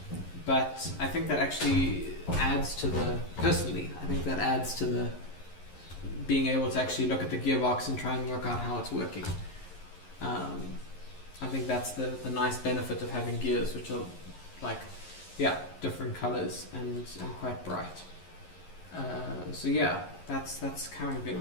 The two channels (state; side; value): late; right; 11 ms